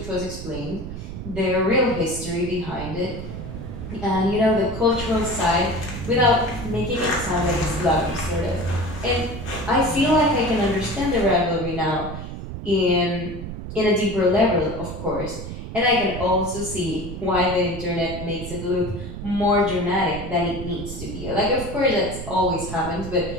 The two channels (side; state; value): right; noise; rumble, 9 dB below the sound